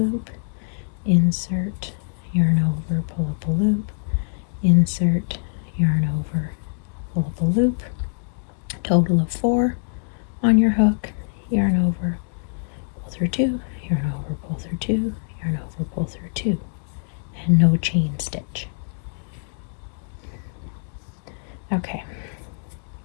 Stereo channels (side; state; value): right; silent; digital silence